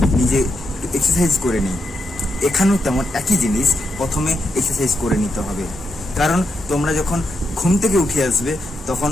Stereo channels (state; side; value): normal; both; correlation 0.83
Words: নিজে এক্সারসাইজ করে নিই। এখানেও তেমন একই জিনিস, প্রথমে এক্সারসাইজ করে নিতে হবে। কারণ তোমরা যখন ঘুম থেকে উঠে আসবে তখন